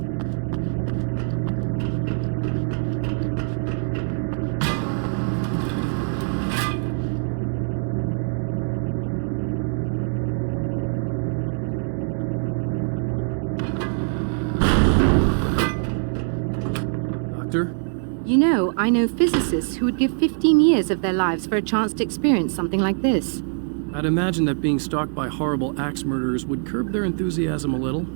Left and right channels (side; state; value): left; silent; 63 dB below the other